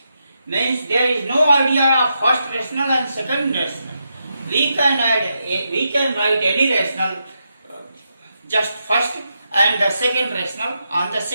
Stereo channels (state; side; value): inverted; both; correlation -0.84